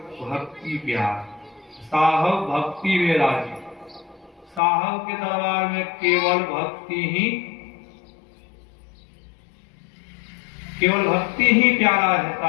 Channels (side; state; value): right; drops out; at 4.6 s